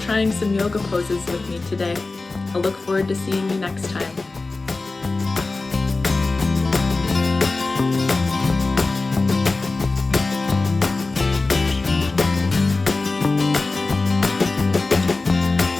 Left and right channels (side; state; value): right; quieter; 3.5 dB